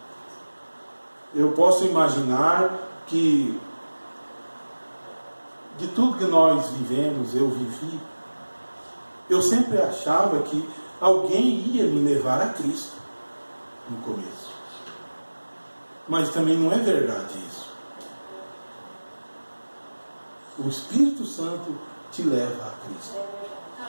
Eu posso imaginar que de tudo que nós vivemos, eu vivi, eu sempre achava que alguém ia me levar a Cristo no começo. Mas também não é verdade isso. O Espírito Santo te leva a Cristo.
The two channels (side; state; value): both; inverted; correlation -1.00